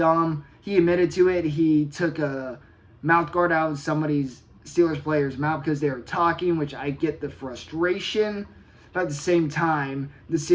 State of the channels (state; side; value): identical; both; correlation 1.00